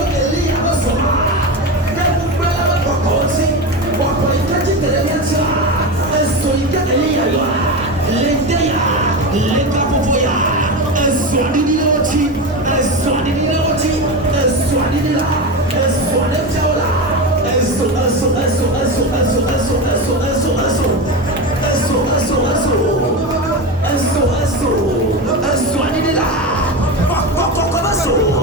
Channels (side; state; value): both; normal; correlation 0.20